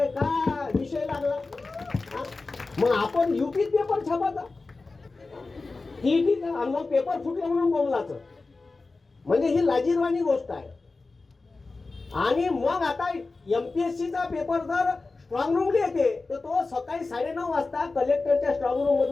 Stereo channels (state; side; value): quieter; right; 3.7 dB